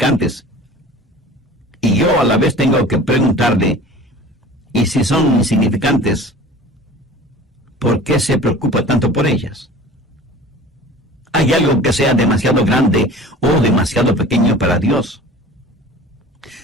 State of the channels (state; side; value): normal; both; correlation 0.42